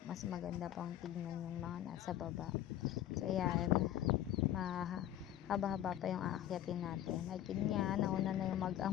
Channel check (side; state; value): right; quieter; 12.0 dB